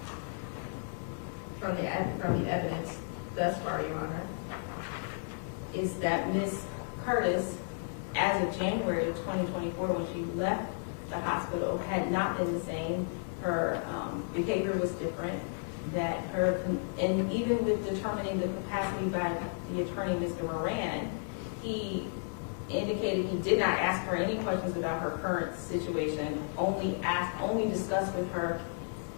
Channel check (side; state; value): right; silent; digital silence